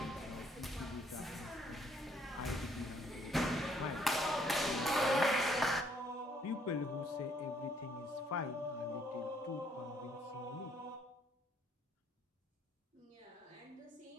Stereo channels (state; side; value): normal; both; correlation 0.66